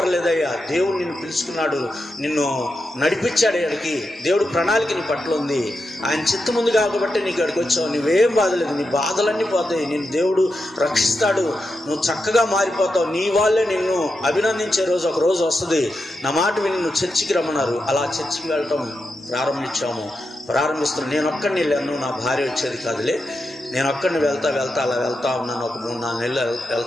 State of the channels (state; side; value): normal; both; correlation 0.87